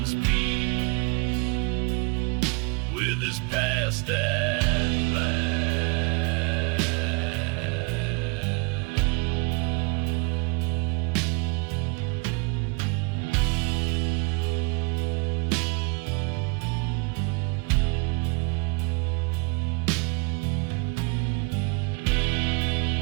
peace with his past at last.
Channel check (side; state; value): left; quieter; 30.3 dB